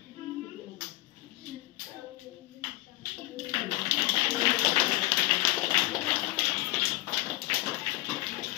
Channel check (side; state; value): right; quieter; 19.4 dB